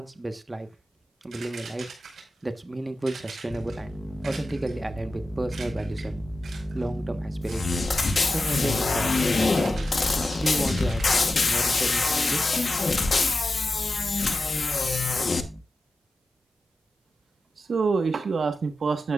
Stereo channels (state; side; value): normal; both; correlation 0.92